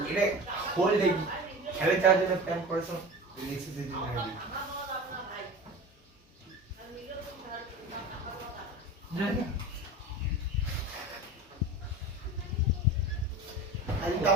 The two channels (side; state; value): both; normal; correlation 0.33